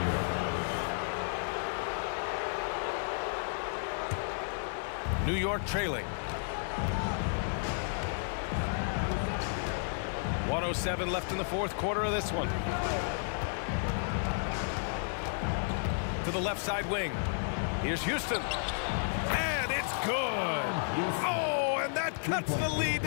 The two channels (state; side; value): silent; right; 56 dB below the other